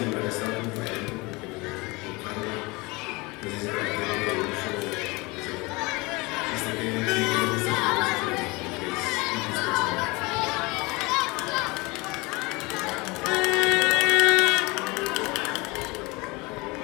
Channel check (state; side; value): quieter; right; 25.0 dB